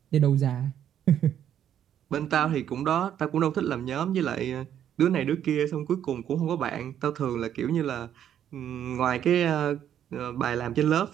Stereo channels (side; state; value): left; quieter; 10.0 dB